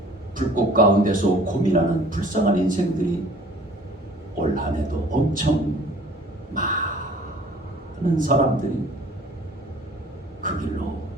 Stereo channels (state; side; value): normal; both; correlation 0.51